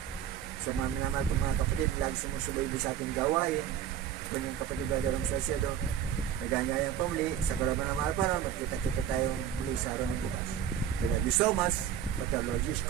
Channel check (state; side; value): quieter; left; 9.6 dB